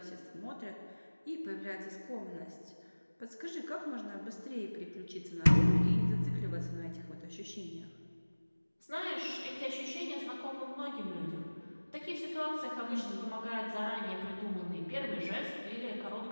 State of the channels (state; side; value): inverted; both; correlation -1.00